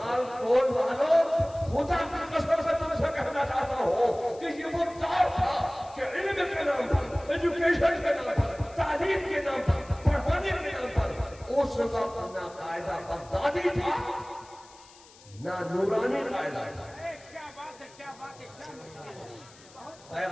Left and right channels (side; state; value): left; noise; hiss, 24 dB below the sound